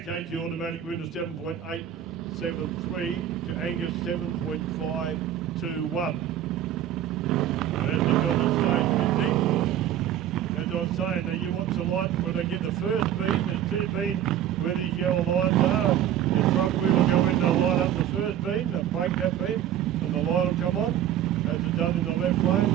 takes the automatic win to 7.873 to Angus 7.521. As they got the stage a bit deep. As I was saying, now you watch the light when they get the first beam, there's two beams where these yellow lines are. The front wheel will go in to light up the first beam, they'll break that beam, and the light will come on. As it's done in the left lane.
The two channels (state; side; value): quieter; left; 10.8 dB